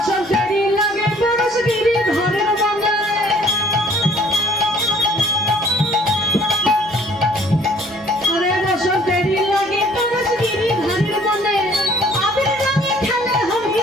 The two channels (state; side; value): noise; left; hum, 28 dB below the sound